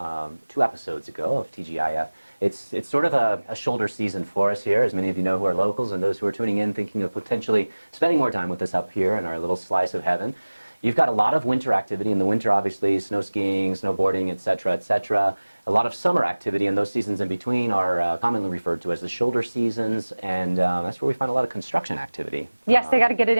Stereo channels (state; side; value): inverted; both; correlation -1.00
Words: 2 episodes ago of TGIF, it's sort of a shoulder season for us here, as many of you know who are locals and those who are tuning in thinking of potentially spending more time with us up here in our little slice of heaven. You've got a lot of winter activity in the winter, obviously, snow skiing, snowboarding, etc., etc. A lot of summer activity, and those seasons in between are commonly referred to as the shoulder seasons, and that's where we find a lot of construction activity. Yes, they got to get it